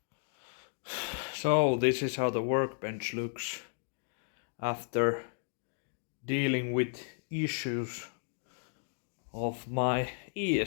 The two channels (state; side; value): silent; right; 55 dB below the other